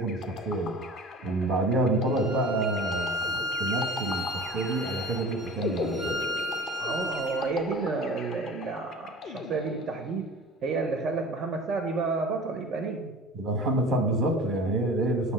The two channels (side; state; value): both; normal; correlation 0.40